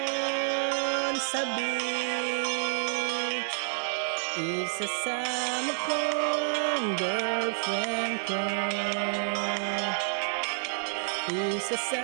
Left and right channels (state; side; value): silent; left; digital silence